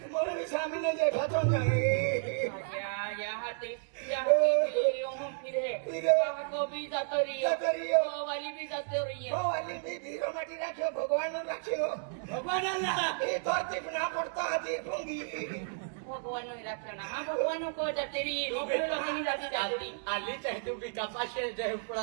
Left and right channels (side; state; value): left; silent; digital silence